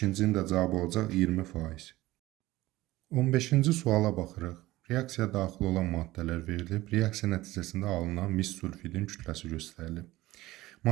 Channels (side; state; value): left; quieter; 17.8 dB